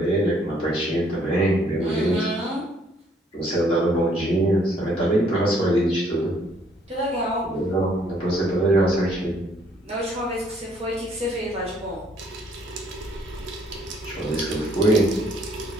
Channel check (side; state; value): both; normal; correlation 0.64